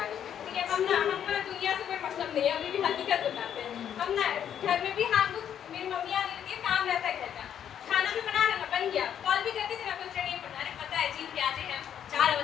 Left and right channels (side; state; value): right; quieter; 9.3 dB